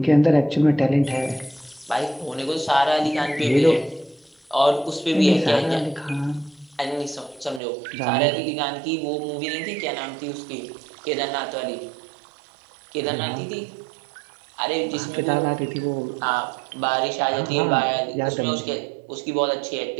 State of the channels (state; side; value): drops out; left; at 7.6 s